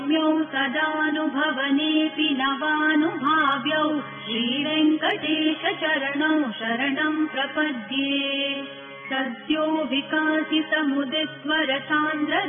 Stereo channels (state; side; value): identical; both; correlation 1.00